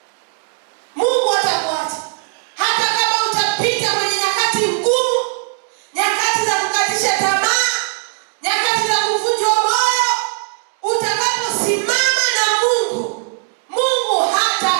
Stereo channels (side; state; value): left; silent; digital silence